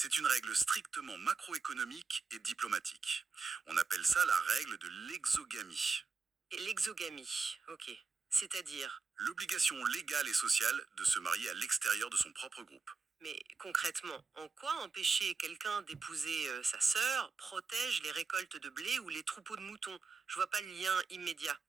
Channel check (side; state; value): left; quieter; 4.6 dB